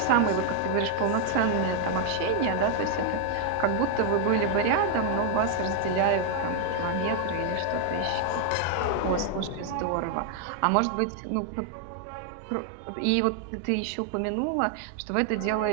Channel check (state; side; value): different; both; correlation 0.00